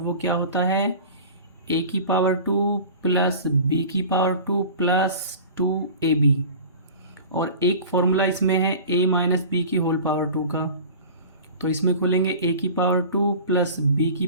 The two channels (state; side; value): inverted; both; correlation -0.38